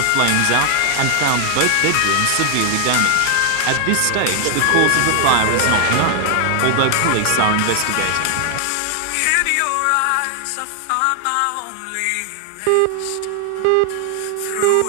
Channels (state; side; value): different; both; correlation 0.00